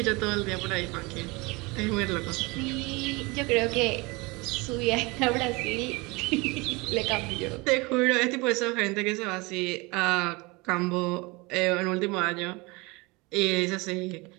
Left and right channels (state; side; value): quieter; left; 25.4 dB